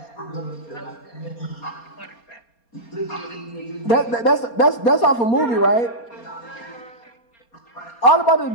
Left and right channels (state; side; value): late; right; 4.3 ms